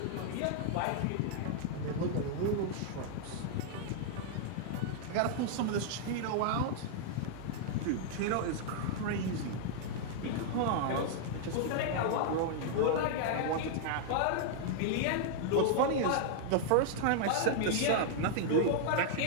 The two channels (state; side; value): different; both; correlation -0.01